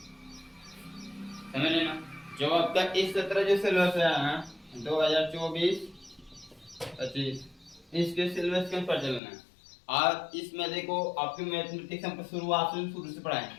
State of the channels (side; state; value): right; drops out; at 9.2 s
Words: समझ लेना। जो आपका इस सत्र जो सिलेबस है ना, 2024-25, इसके सिलेबस के ऊपर चलना है। और इसमें देखो आपकी मैथमेटिक्स हम शुरू से पढ़ाए,